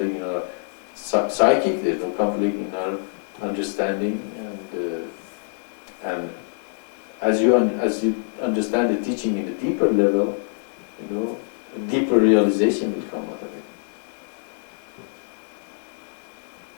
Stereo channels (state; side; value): silent; right; digital silence